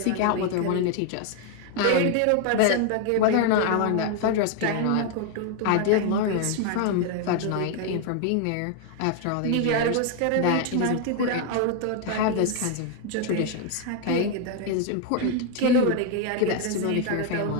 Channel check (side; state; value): both; different; correlation 0.01